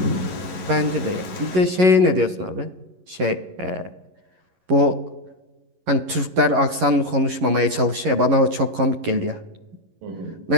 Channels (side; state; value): left; late; 11 ms